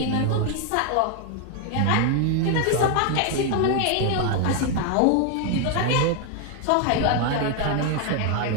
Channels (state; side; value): different; both; correlation 0.00